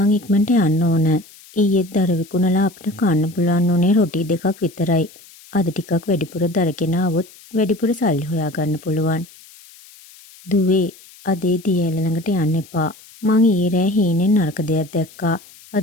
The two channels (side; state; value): left; noise; hiss, 23 dB below the sound